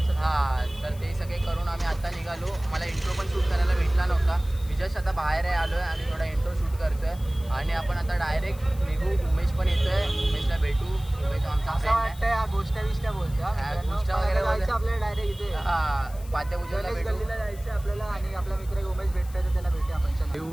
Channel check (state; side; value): noise; left; hiss, 21 dB below the sound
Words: हां, तर ते सगळे करून आम्ही आता निघालो. मला इंट्रो पण शूट करायला भेटला नव्हता. मी जस्ट आता बाहेर आलो आहे आणि थोडा इंट्रो शूट करतो आहे. आणि आपण आता डायरेक्ट निघू. उमेश पण येतो आहे. उमेशला भेटू. उमेश आमचा फ्रेंड आहे. गोष्ट बोलतो. गोष्ट वगैरे आपल्याला डायरेक्ट इथे हां पाद्यपूजनला भेटू. जायचं आपल्याला. आणि आपला मित्र उमेश भेटतोय तर त्याला भेटू आपण.